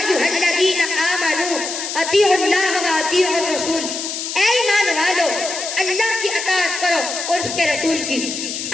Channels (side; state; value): left; noise; hiss, 5 dB below the sound